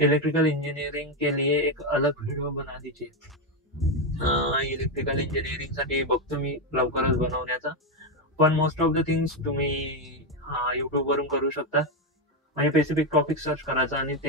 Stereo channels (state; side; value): normal; both; correlation 0.08